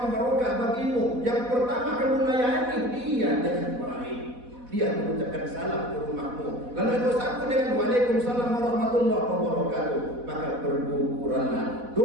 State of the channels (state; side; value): late; left; 4.1 ms